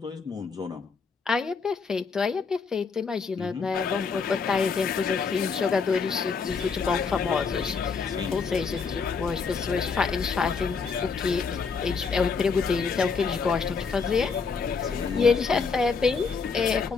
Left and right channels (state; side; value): quieter; right; 5.1 dB